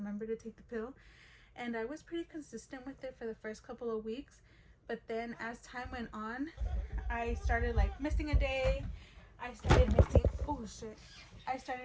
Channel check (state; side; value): identical; both; correlation 1.00